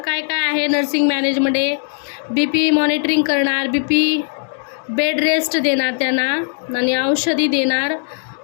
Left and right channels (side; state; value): right; silent; 67 dB below the other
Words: आहे नर्सिंग मॅनेजमध्ये, BP मॉनिटरिंग करणार, बेड रेस्ट देणार त्यांना आणि औषधी देणार